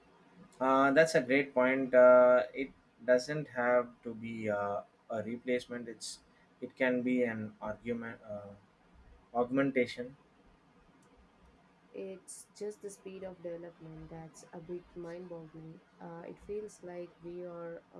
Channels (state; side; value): identical; both; correlation 1.00